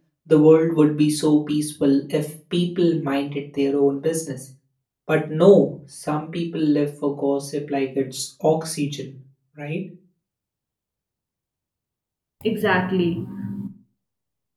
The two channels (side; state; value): both; identical; correlation 1.00